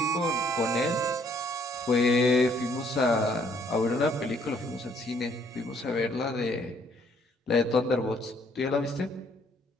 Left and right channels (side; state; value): both; normal; correlation 0.65